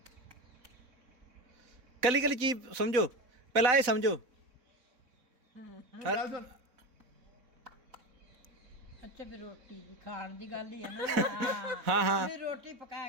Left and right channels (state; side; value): late; left; 4.0 ms